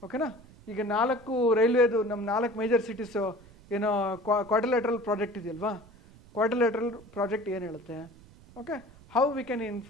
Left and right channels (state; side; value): noise; right; rumble, 23 dB below the sound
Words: ಓಕೆನಾ, ಈಗ 4 ರೈಲ್ವೇದು ನಮ್ಮ 4 ಮೇಜರ್ ಸಿಟೀಸು ಏನೋ ಕ್ವಾಡ್ರಿಲೇಟ್ರಲ್ ಪ್ರಾಜೆಕ್ಟ್ ಇದೆಯಲ್ವಾ, ಕ್ವಾಡ್ರಿಲೇಟ್ರಲ್ ಪ್ರಾಜೆಕ್ಟ್ ಏನು ಹೇಳುತ್ತೆ. Okay, how we can